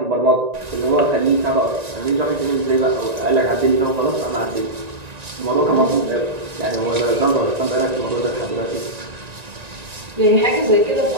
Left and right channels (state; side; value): late; left; 1.9 ms